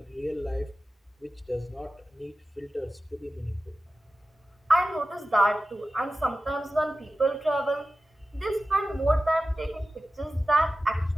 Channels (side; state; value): both; normal; correlation 0.94